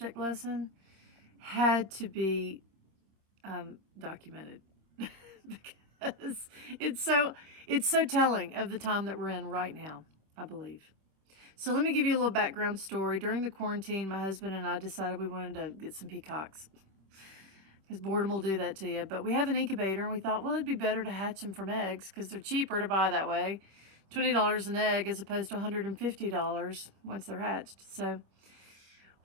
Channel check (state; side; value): late; left; 26 ms